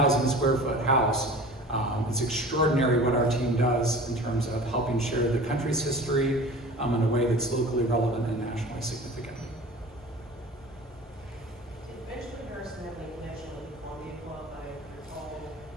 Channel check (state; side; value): normal; both; correlation 0.40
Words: square foot house, it's extraordinary what our team does in terms of helping share the country's history in a way that's locally relevant and nationally significant. Did Benjamin Harrison have any connection with the Columbia Club? I recall.